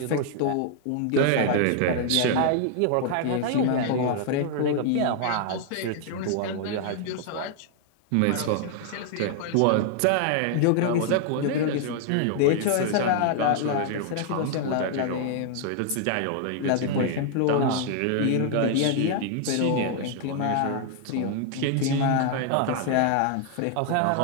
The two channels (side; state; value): both; different; correlation 0.00